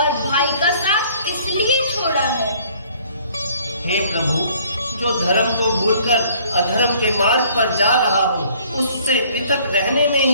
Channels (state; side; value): inverted; both; correlation -0.57